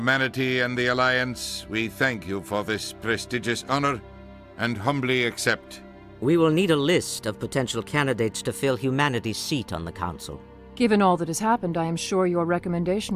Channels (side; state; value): both; identical; correlation 1.00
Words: and the Alliance, we thank you for this prestigious honor and humbly accept. We will need a list of potential candidates to fill humanity's seat on the Council. Given all that has happened, I am sure your